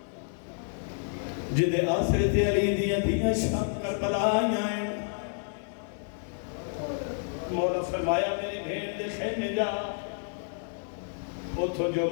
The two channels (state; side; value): silent; right; digital silence